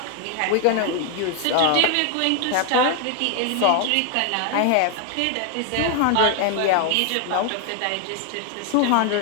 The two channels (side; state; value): both; different; correlation 0.01